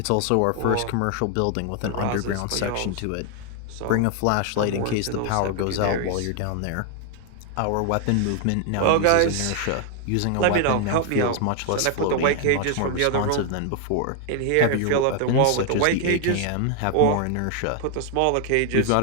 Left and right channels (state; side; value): different; both; correlation 0.00